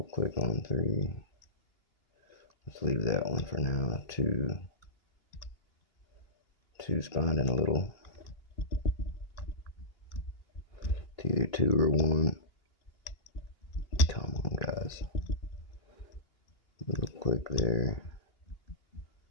click on 3. Let's leave that one for now. 2. 2's binding a little. It's either 2 or 1. Come on, guys. Little click there.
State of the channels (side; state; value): right; late; 2.8 ms